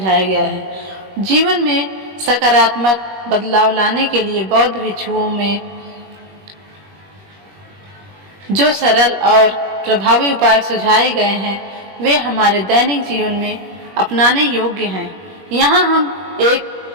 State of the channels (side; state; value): left; late; 21 ms